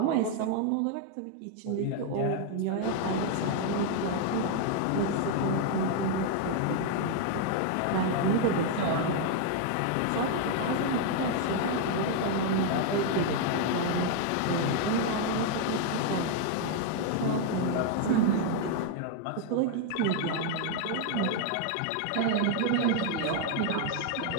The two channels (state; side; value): different; both; correlation 0.00